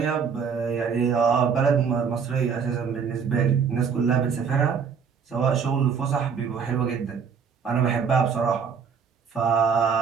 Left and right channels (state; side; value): quieter; left; 6.5 dB